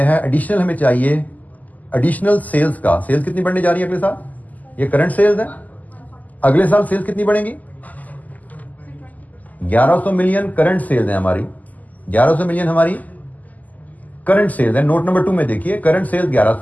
है एडिशनल हमें चाहिए एडिशनल सेल्स का. सेल्स कितनी बढ़ने जा रही है अगले साल? ये करंट सेल्स है. अगले साल सेल्स कितनी बढ़ेंगी? 1100 मिलियन करंट सेल्स है हमारी. 1100 मिलियन हमारी करंट सेल्स है. नोट नंबर 2 में देखिए, करंट सेल्स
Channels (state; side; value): late; right; 0.079 ms